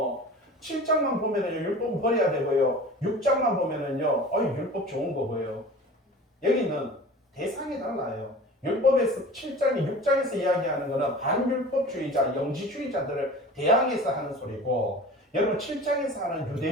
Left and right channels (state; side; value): normal; both; correlation 0.39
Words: 7장만 보면은요, 율법은 버려야 되고요. 6장만 보면은요, 율법 좋은 거고요. 여기는 대상이 달라요. 율법에서 7장이 6장에서 이야기하는 거는 반율법주의자, 영지주의자들을 대항해서 하는 소리고, 여러분 7장에서 하는